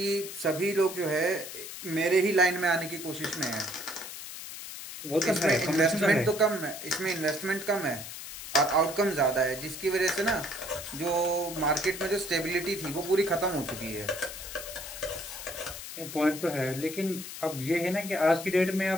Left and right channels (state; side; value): noise; left; hiss, 10 dB below the sound